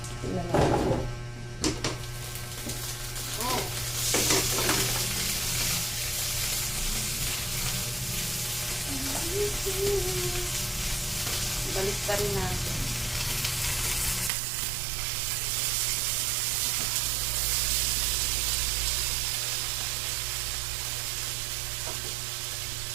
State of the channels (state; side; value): drops out; left; at 14.3 s